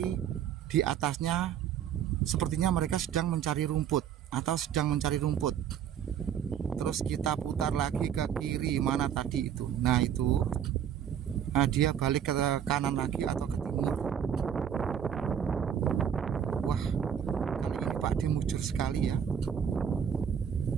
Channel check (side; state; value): left; quieter; 8.8 dB